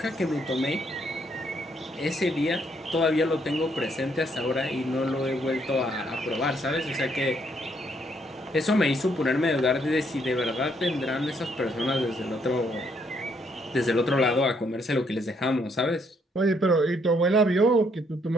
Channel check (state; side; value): normal; both; correlation 0.71